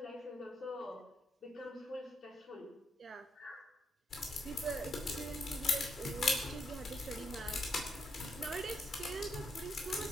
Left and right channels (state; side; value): normal; both; correlation 0.78